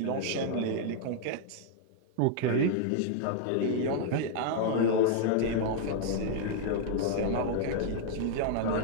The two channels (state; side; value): different; both; correlation -0.01